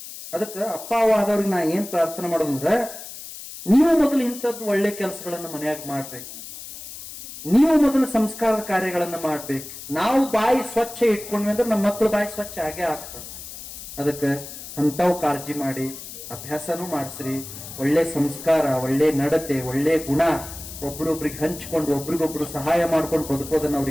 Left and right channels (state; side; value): noise; left; hiss, 12 dB below the sound